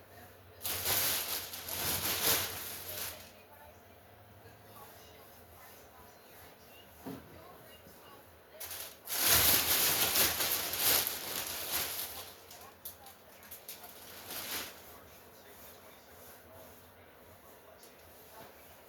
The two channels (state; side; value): identical; both; correlation 1.00